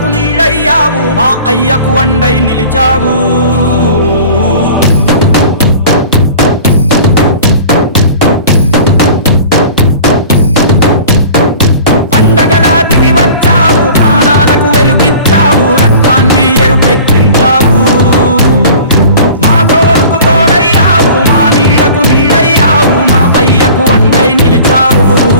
నీడయ్యావు, మా అయ్యకు వండై నిలిచావు. పండగలా దిగి వచ్చావు, ప్రాణాలకు వెలుగిచ్చావు, రక్తాన్నే ఎరుపెక్కించావు. మా తోడుకు తోడయ్యావు, మా నీడకు నీడయ్యావు, మా అయ్యకు వండై నిలిచావు.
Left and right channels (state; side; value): inverted; both; correlation -0.43